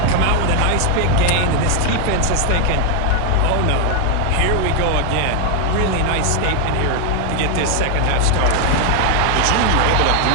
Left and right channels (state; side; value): different; both; correlation 0.00